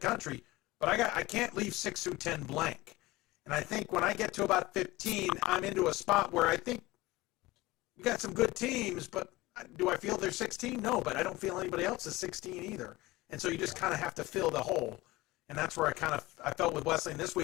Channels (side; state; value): right; quieter; 19.2 dB